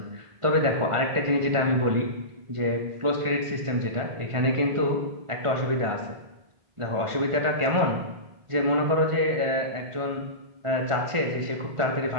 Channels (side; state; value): left; late; 1.5 ms